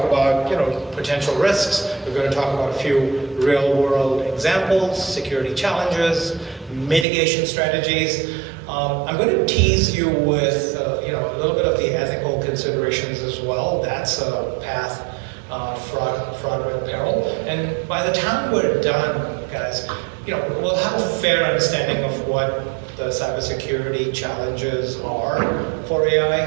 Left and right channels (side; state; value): left; drops out; at 7.1 s